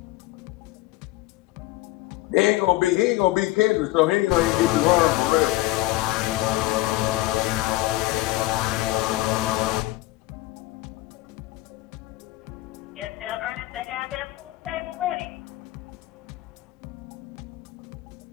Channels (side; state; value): right; quieter; 18.1 dB